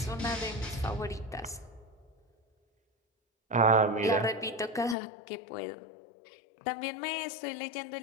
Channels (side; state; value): right; drops out; at 5.0 s